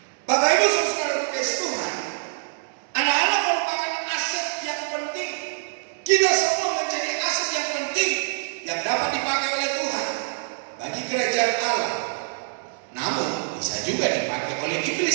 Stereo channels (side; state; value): left; silent; digital silence